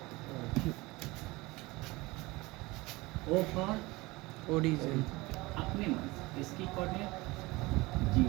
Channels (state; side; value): quieter; left; 22.1 dB